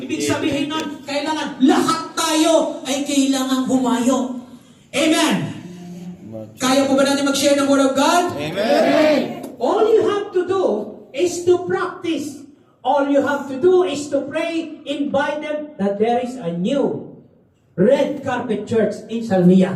sabihin nun, kailangan lahat tayo ay kailangan humayo. Amen. Kaya po ba natin mag-share ng Word of God? Amen. All you have to do is to practice. All you have to do is to pray, invite them that there is a new red carpet church in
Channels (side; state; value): both; identical; correlation 1.00